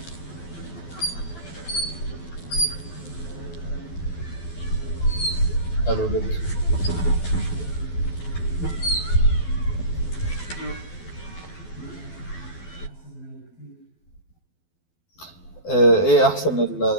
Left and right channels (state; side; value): late; right; 12 ms